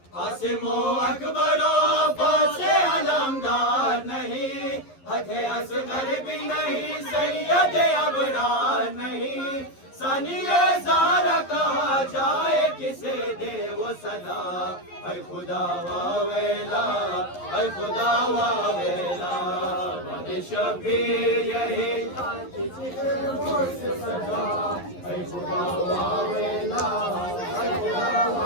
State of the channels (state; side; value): late; right; 11 ms